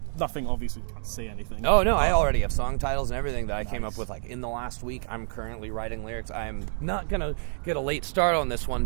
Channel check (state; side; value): silent; left; digital silence